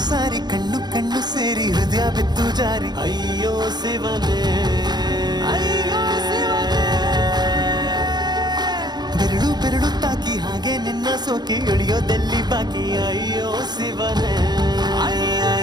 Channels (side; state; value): left; late; 0.20 ms